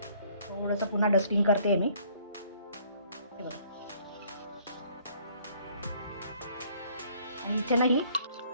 थोडंसं पुन्हा डस्टिंग करते मी. हे बघा. आणि इथे नाही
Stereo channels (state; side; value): inverted; both; correlation -0.60